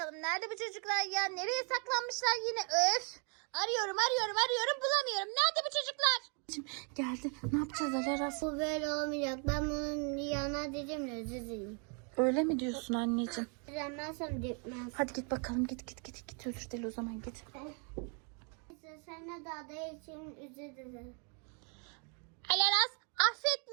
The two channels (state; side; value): quieter; left; 38.0 dB